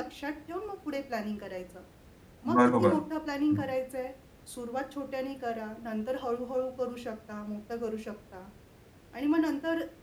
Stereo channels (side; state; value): both; identical; correlation 1.00